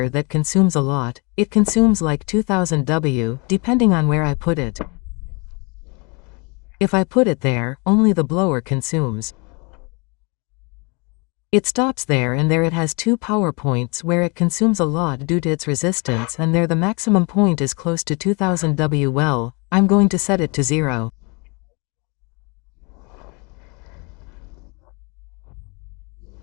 that consumes a lot. It consumes like 2000 W, depending on where I put it. If I put it there, only the blower consumes. It stops there, and there it has 2 power points where it consumes a lot due to its resistance, and there the maximum point is close to 2000 W. Well, I'm going to set it to 0.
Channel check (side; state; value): right; quieter; 30.9 dB